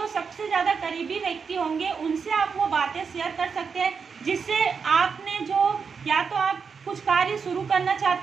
सबसे ज़्यादा करीबी व्यक्ति होंगे, उनसे आप वो बातें शेयर कर सकते हैं, जिससे आपने जो, या तो आप कुछ कार्य शुरू करना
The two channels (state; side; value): quieter; left; 5.8 dB